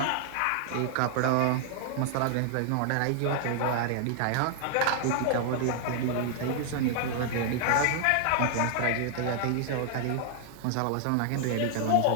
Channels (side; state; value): both; different; correlation 0.00